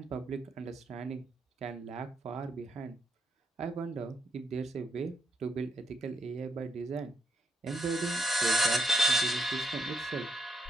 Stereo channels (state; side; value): normal; both; correlation 0.75